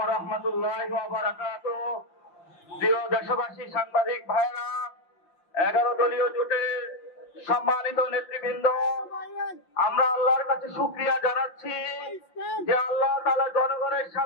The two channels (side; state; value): right; late; 5.7 ms